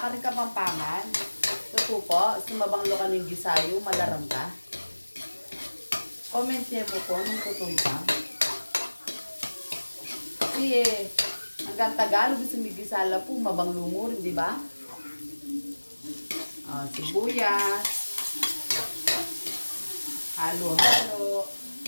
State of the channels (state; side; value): inverted; both; correlation -1.00